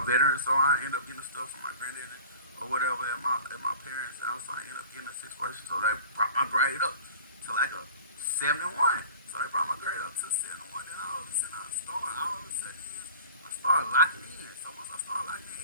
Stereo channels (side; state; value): both; inverted; correlation -0.42